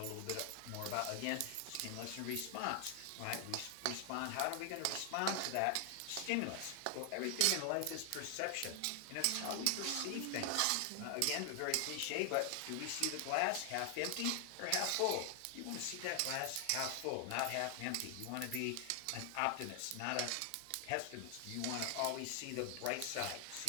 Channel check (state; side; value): different; both; correlation 0.00